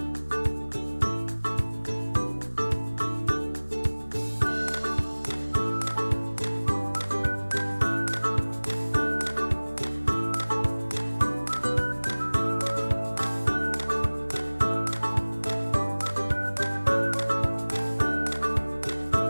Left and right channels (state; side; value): inverted; both; correlation -1.00